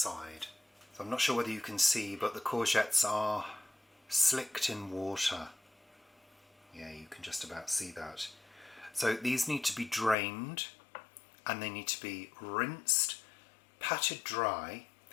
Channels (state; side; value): drops out; right; at 10.2 s